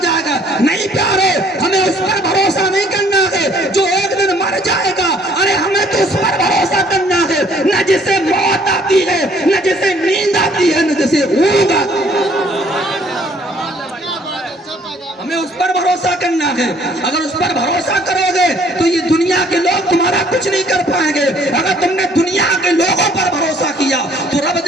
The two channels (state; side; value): normal; both; correlation 0.61